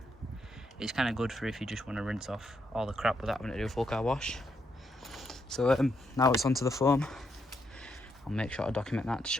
It's kind of good for if you just want to rinse off all the crap without having to do a full car wash. So now it's onto the foam. I'll make sure to document that to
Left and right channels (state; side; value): normal; both; correlation 0.79